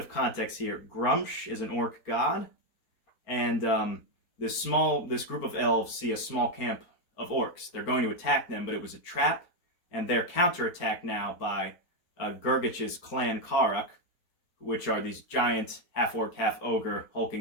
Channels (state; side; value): late; right; 4.2 ms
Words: context here. Grumsh is an orc god, and this group of elves see a small camp of orcs. They're going to attack them, but it was a trap, and they're counterattacked now by Gurgich's clan Karak, which are these giant half-orc, half-ogre